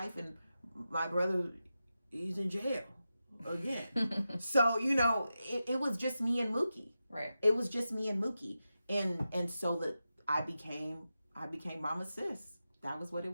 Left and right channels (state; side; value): inverted; both; correlation -0.91